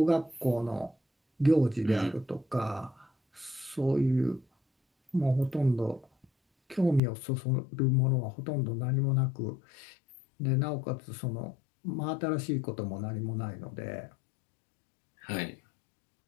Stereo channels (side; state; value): right; drops out; at 7.0 s